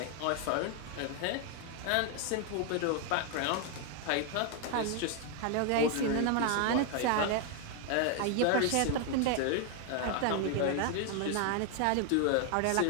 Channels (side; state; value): both; different; correlation 0.01